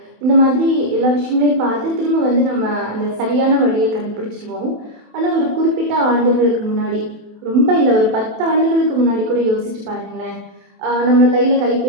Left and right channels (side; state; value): left; late; 27 ms